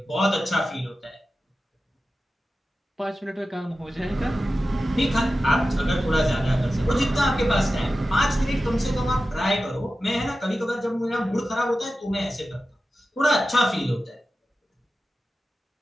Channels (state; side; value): normal; both; correlation 0.93